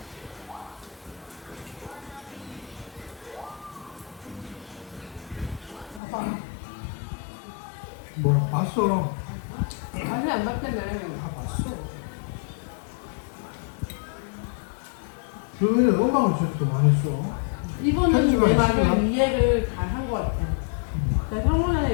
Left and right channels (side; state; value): right; drops out; at 6.0 s